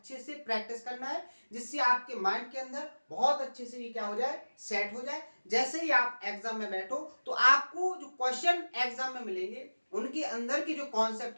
से प्रैक्टिस करना है जिससे आपके माइंड के अंदर बहुत अच्छे से ये क्या हो जाए, सेट हो जाए। जैसे ही आप एग्जाम में बैठो तो आपको जो क्वेश्चन एग्जाम में मिलेंगे उनके अंदर के जो कॉन्सेप्ट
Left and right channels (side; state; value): both; inverted; correlation -1.00